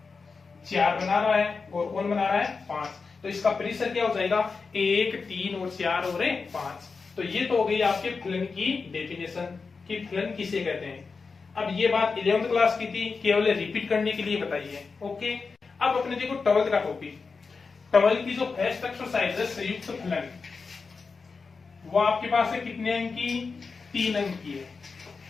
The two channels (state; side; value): quieter; right; 4.7 dB